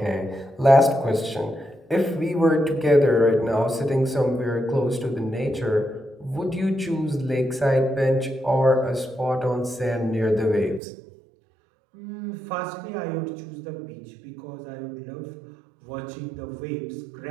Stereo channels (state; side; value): drops out; left; at 10.8 s